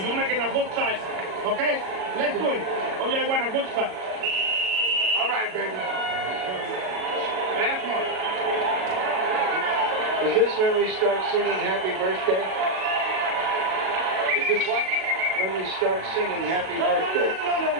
You're making a good fight. Okay? Let's do it. Only I want a good fight. All right, baby. Last one. Is this when we start singing Happy Birthday? Is this what? When we start singing Happy No, Birthday.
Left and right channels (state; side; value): late; left; 37 ms